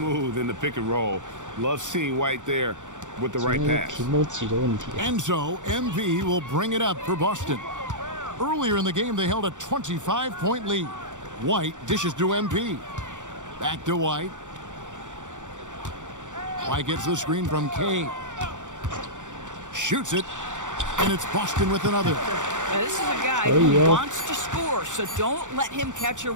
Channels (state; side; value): late; left; 0.86 ms